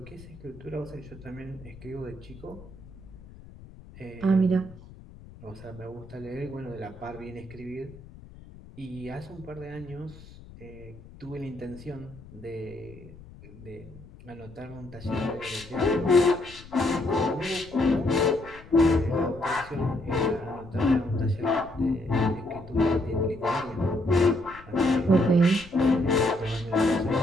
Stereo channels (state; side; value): noise; left; rumble, 19 dB below the sound